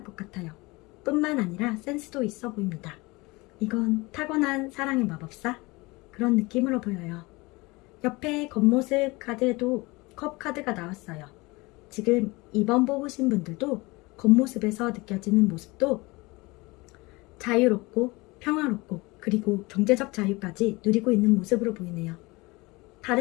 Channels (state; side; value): quieter; right; 23.6 dB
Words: 것 같아요. 뿐만 아니라 센스도 있어 보입니다. 이건 타고난 사랑의 마법사? 그런 느낌으로 보여요. 옆에 겉모습 카드에도 컵 카드가 나왔어요. 지금 2번 뽑으신 분들도 겉모습에서 느껴지는 모습도 자유롭고 평화롭고 그리고 경제적 자유까지 누리고 있는 모습으로 보이네요.